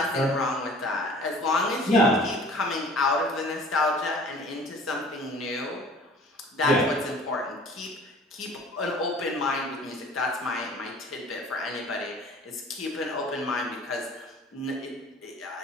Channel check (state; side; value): normal; both; correlation 0.48